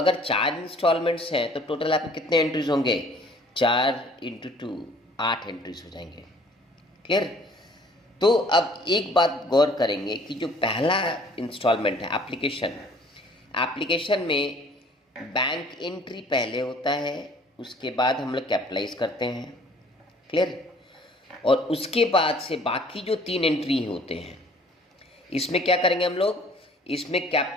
4 इंस्टॉलमेंट्स हैं तो टोटल आपके कितने एंट्रीज होंगे? 4 इंटू 2 8 एंट्रीज हो जाएंगे। क्लियर? तो अब एक बात गौर करेंगे कि जो पहला इंस्टॉलमेंट है एप्लीकेशन में बैंक एंट्री पहले होता है, उसके बाद हम लोग कैपिटलाइज करते हैं। क्लियर? और उसके बाद से बाकी जो 3 एंट्री होते हैं, इसमें क्या करेंगे हम लोग, इसमें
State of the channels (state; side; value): normal; both; correlation 0.55